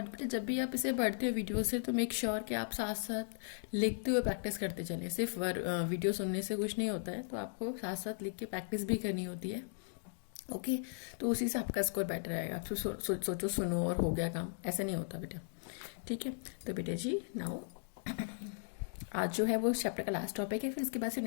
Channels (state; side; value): silent; right; digital silence